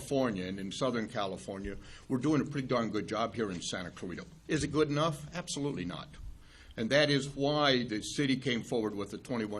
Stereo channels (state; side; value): identical; both; correlation 1.00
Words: and in Southern California, we're doing a pretty darn good job here in Santa Clarita. Is it good enough? Absolutely not. And that is why the city came forward with a